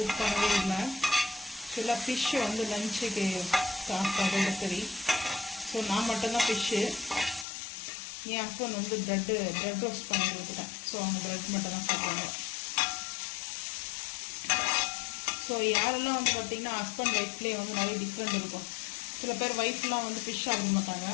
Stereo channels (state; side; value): drops out; right; at 7.5 s